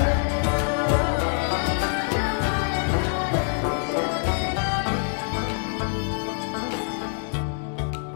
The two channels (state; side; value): silent; right; 62 dB below the other